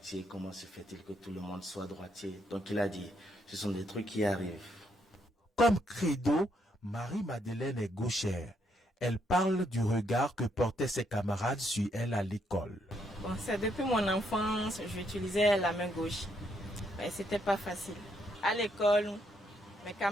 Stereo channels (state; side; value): normal; both; correlation 0.74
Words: Comment se fait-il que tout le monde soit droitier? Donc il a dit, ce sont des trucs qui arrivent. Comme credo, Marie-Madeleine est gauchère. Elle parle du regard que portaient ses camarades sur elle à l'école. Bon, c'est depuis mon enfance, j'utilisais la main gauche. Mais c'était pas facile. À l'école, mes